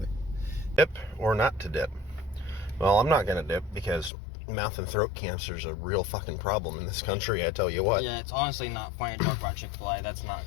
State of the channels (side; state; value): right; drops out; at 4.1 s